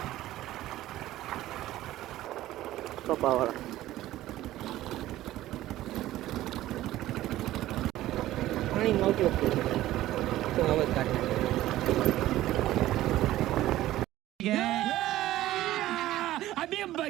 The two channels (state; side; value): quieter; left; 14.9 dB